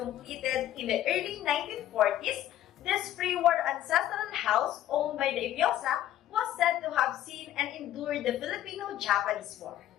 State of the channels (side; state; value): right; quieter; 12.7 dB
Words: in the early 1940s. This pre-war ancestral house owned by the Eviosa was said to have seen and endured the Filipino-Japanese War.